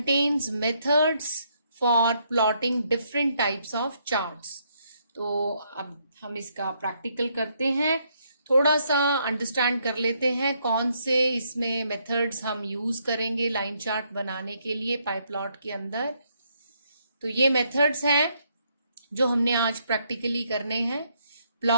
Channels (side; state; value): both; inverted; correlation -0.73